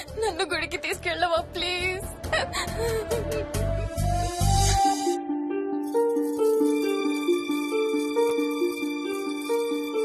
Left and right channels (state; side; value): identical; both; correlation 1.00